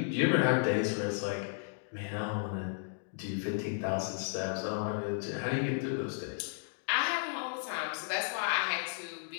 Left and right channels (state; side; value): silent; right; digital silence